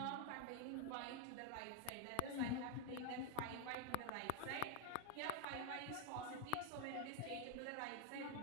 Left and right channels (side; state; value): both; different; correlation 0.01